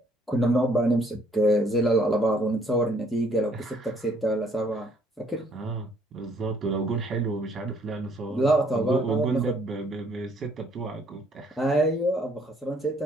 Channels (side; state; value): both; normal; correlation 0.64